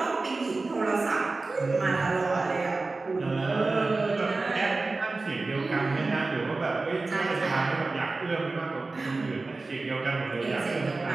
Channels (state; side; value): quieter; left; 3.5 dB